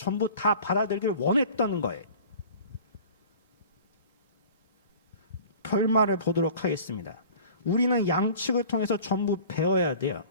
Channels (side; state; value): both; inverted; correlation -0.44